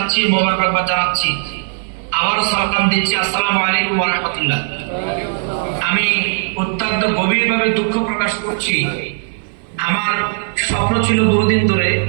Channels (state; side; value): silent; left; 59 dB below the other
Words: মোবারকবাদ জানাচ্ছি, আবারও সালাম দিচ্ছি। আসসালামু আলাইকুম ওয়া রাহমাতুল্লাহ। আমি অত্যন্ত গভীরভাবে দুঃখ প্রকাশ করছি। আমার স্বপ্ন ছিল বহুদিন ধরে,